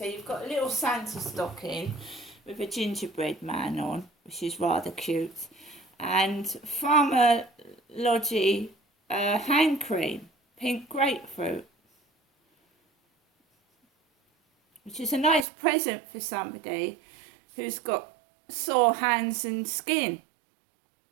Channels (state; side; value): drops out; left; at 15.5 s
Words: you've got a little Santa stocking with a gingerbread man on, which is rather cute. And Farmer Lodgy hand cream, pink grapefruit, which is a nice present for somebody who's got sore hands and skin.